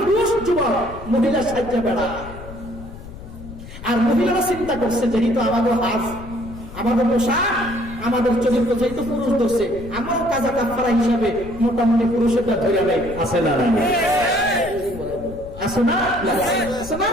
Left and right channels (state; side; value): noise; left; rumble, 14 dB below the sound